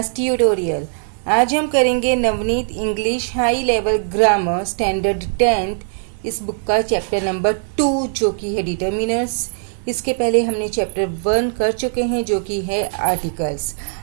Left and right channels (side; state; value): left; silent; digital silence